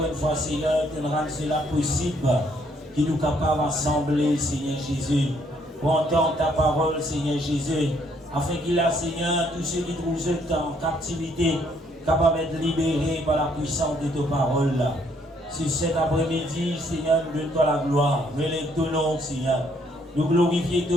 une fois, Seigneur, de rendre cela possible, qu'il nous capable d'assembler, Seigneur Jésus, pour entendre ta parole, Seigneur Jésus, afin qu'il a, Seigneur, tous ceux qui trouvent en captivité, capables d'être libérés par la puissance de ta parole. Sur cet après-midi, Seigneur, nous donne-toi la gloire. Relève ton nom, Seigneur. Nous glorifions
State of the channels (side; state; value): both; normal; correlation 0.68